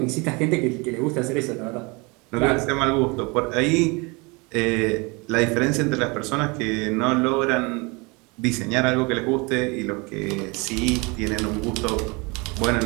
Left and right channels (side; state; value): left; quieter; 27.9 dB